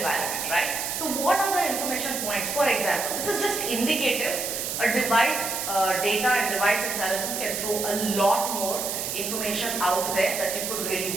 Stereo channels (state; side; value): noise; right; hiss, 3 dB below the sound